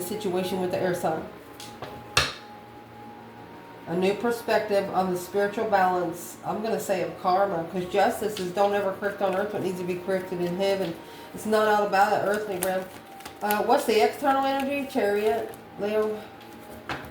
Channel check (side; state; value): both; identical; correlation 1.00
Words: with the air sign. A new perspective on the spiritual balance. I'm going to say of karma, because justice is don't ever correct on earth what needs to be corrected in heaven. It's not all about the earthly realm. What's the external energy? Chariot, Leo.